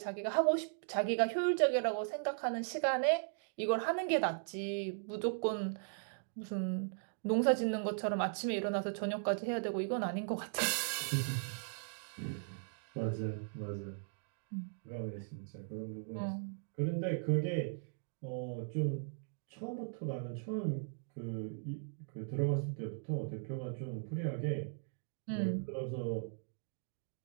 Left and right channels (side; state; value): left; silent; digital silence